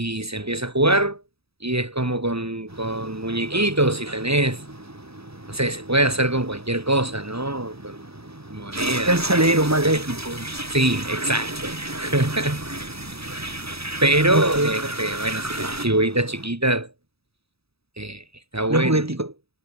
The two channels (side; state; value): left; late; 0.77 ms